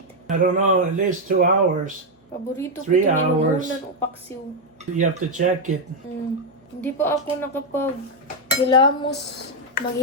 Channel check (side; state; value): both; normal; correlation 0.02